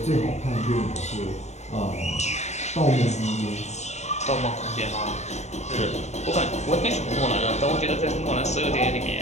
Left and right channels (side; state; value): right; late; 0.33 ms